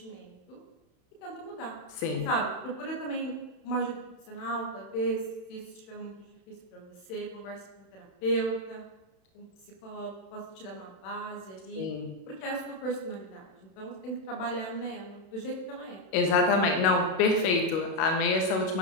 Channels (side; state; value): right; late; 32 ms